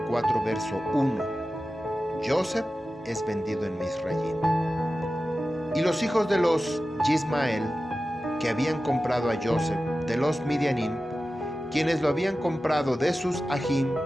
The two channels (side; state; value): both; normal; correlation 0.94